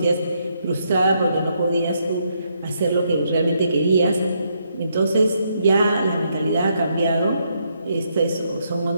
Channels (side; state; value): both; inverted; correlation -0.76